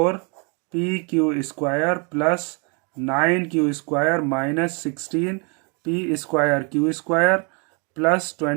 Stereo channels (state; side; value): quieter; left; 34.0 dB